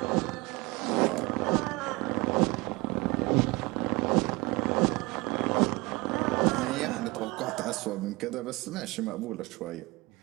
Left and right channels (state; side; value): quieter; left; 23.4 dB